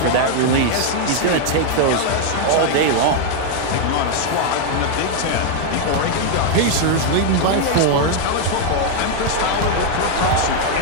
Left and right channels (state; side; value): different; both; correlation 0.00